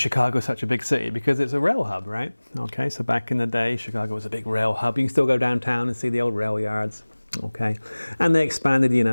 such a big city? Because it's a rail hub, right? Okay, so back in the day, Chicago was a big rail hub. You can still go downtown and see the old rail yards, okay? And they expanded,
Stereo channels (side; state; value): both; inverted; correlation -1.00